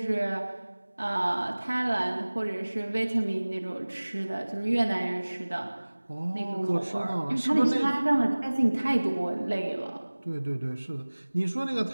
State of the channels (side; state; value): both; inverted; correlation -1.00